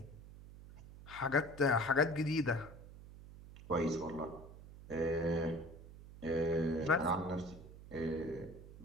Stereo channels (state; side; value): noise; right; hum, 16 dB below the sound